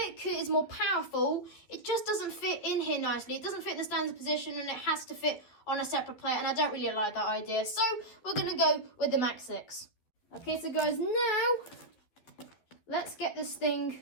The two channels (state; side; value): late; right; 12 ms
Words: it is more powerful, it just doesn't fit in here nicely. It doesn't fit in the standard position, and it has to fit on a separate plate, and I don't really like that idea. So we're going to go with the Max6. Okay, so guys, now let's get this thing